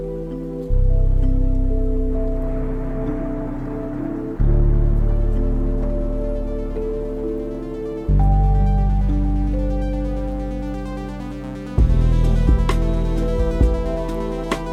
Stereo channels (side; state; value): both; identical; correlation 1.00